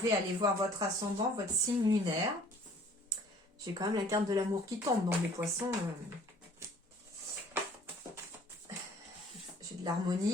aller voir votre ascendant, votre signe lunaire. J'ai quand même la carte de l'amour qui tombe, donc les poissons... J'ai de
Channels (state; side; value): normal; both; correlation 0.54